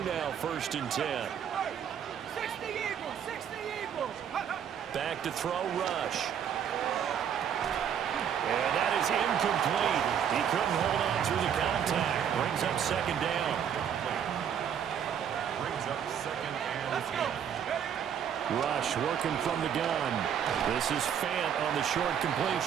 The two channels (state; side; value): quieter; left; 8.6 dB